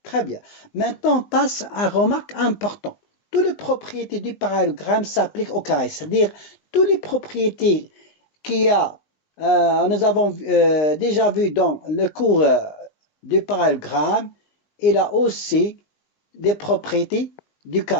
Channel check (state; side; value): late; right; 19 ms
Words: Très bien. Maintenant, on passe à une remarque importante. Toutes les propriétés du parallélogramme s'appliquent au carré, c'est-à-dire toutes les propriétés nous avons déjà vu dans le cours du parallélogramme, il a aussi des propriétés du